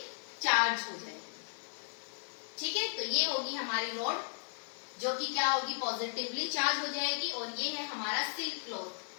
चार्ज हो जाएगी। ठीक है, तो ये होगी हमारी रॉड जो कि क्या होगी, पॉजिटिवली चार्ज हो जाएगी, और ये है हमारा सिल्क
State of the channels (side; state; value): right; silent; digital silence